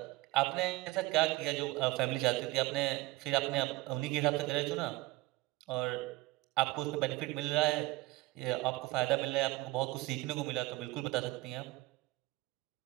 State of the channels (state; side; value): quieter; left; 19.9 dB